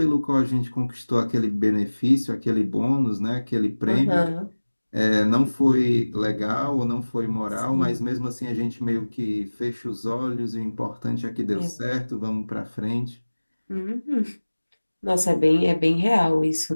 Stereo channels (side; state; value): both; inverted; correlation -1.00